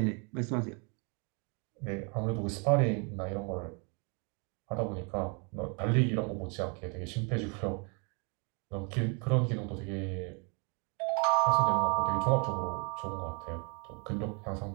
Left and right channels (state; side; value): quieter; left; 34.7 dB